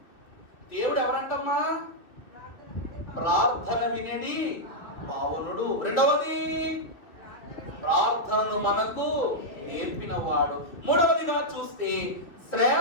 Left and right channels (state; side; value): late; right; 2.5 ms